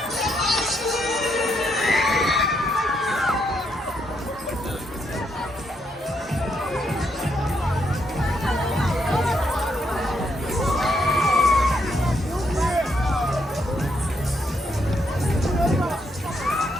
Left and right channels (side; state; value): both; normal; correlation 0.77